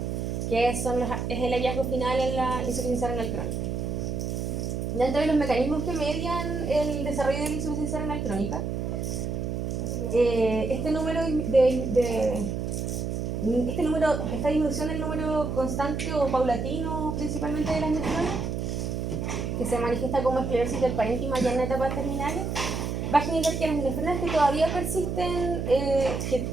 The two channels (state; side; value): noise; right; hum, 2 dB below the sound